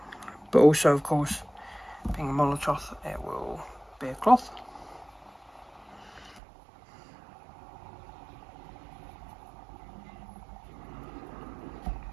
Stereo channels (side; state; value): left; drops out; at 6.4 s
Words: But also, of course, being a Molotov, it will be a cloth.